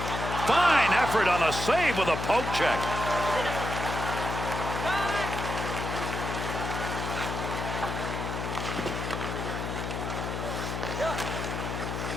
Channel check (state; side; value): noise; left; hum, 4 dB below the sound